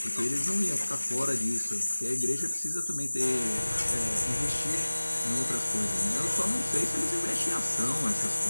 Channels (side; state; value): both; inverted; correlation -1.00